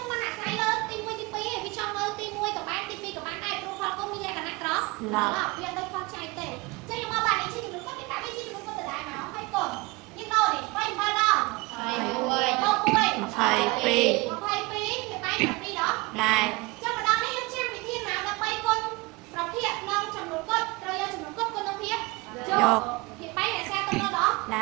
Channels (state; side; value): quieter; left; 23.9 dB